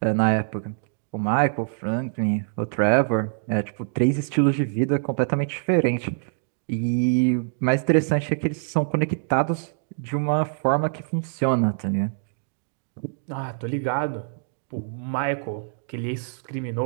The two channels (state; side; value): silent; left; digital silence